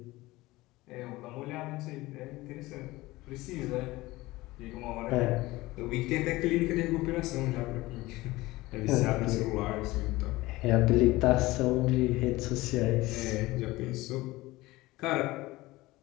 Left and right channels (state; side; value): quieter; right; 19.4 dB